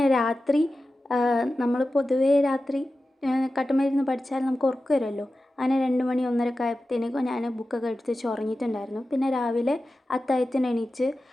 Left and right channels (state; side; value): normal; both; correlation 0.93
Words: രാത്രി നമ്മൾ പൊതുവേ രാത്രി കട്ടുമരുന്ന് പഠിച്ചാൽ നമുക്ക് ഉറക്കം വരുമല്ലോ. അങ്ങനെ 2 മണി 1:30 ആയപ്പോഴത്തേക്കും ഞാൻ ബുക്കൊക്കെ എടുത്ത് വെച്ച് ഉറങ്ങിയിട്ടുണ്ടായിരുന്നു. പിന്നെ രാവിലെ അത്താഴത്തിന് എണീച്ച്